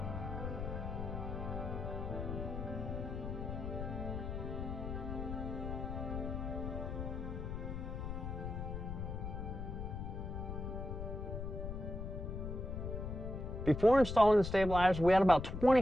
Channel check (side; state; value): left; noise; rumble, 5 dB below the sound